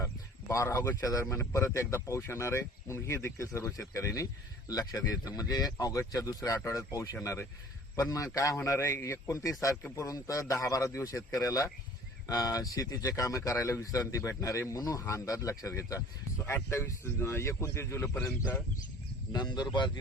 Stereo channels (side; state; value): both; normal; correlation 0.49